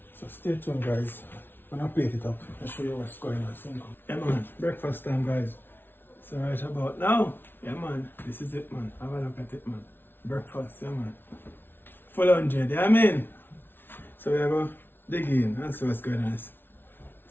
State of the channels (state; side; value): late; right; 0.10 ms